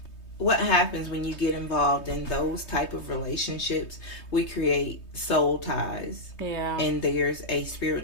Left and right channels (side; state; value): right; late; 3.2 ms